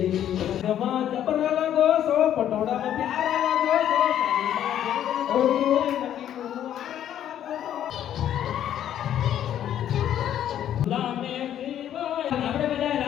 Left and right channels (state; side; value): quieter; right; 10.7 dB